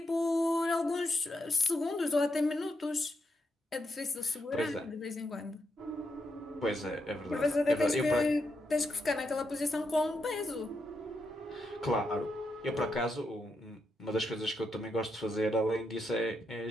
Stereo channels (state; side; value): normal; both; correlation 0.82